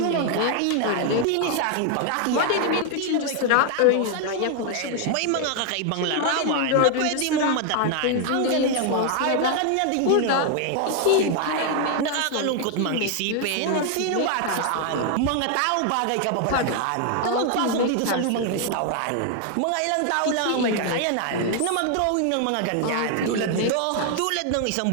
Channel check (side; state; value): both; different; correlation 0.00